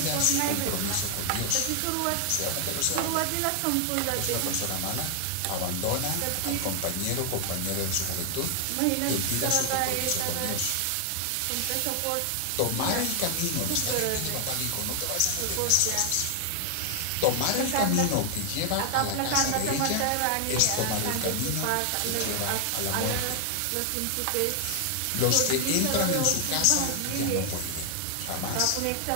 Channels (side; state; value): both; different; correlation 0.00